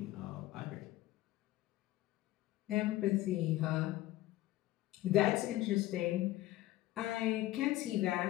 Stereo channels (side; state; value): right; quieter; 16.2 dB